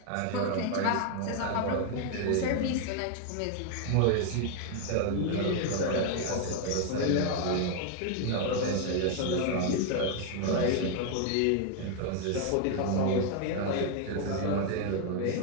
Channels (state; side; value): different; both; correlation 0.00